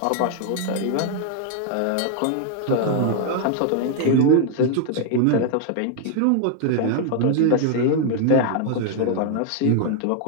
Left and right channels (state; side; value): different; both; correlation 0.00